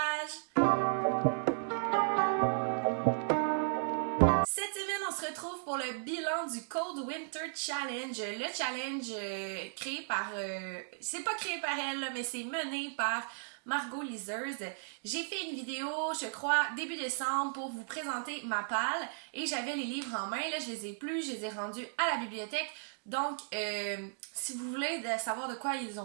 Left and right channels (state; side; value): silent; left; digital silence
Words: Cette semaine, on se retrouve pour le bilan du Cold Winter Challenge. Le challenge créé par... c'est pas créé par elle, là, mais c'est mené par Margot Liseuse. J'ai fait une vidéo, je crois, début décembre pour vous présenter ma palle et j'avais les livres en main. Là, je les ai plus, je les ai rendus à la bibliothèque. Donc, si vous voulez savoir de quoi ils